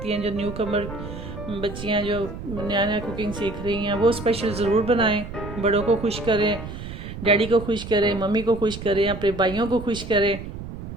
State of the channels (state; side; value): noise; right; rumble, 10 dB below the sound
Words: हैं, जो न्यू कमर बच्चियाँ जो नया नया कुकिंग सीख रही हैं, वो स्पेशल ज़रूर बनाएं। बड़ों को खुश करें, डैडी को खुश करें, मम्मी को खुश करें, अपने भाइयों को खुश करें।